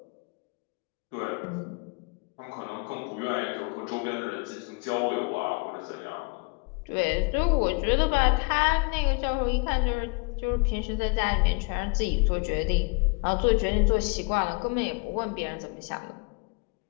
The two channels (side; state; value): right; quieter; 32.2 dB